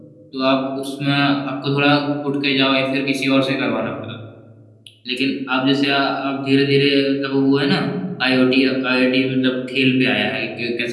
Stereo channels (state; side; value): identical; both; correlation 1.00